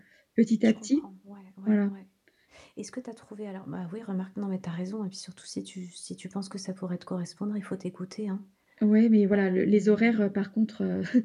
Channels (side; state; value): both; identical; correlation 1.00